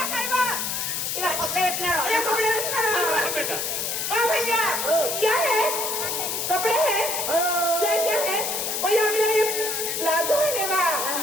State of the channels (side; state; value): left; noise; hiss, 1 dB below the sound